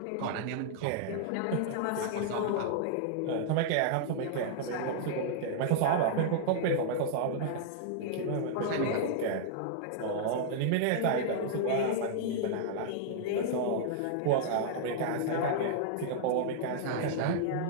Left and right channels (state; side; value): different; both; correlation -0.01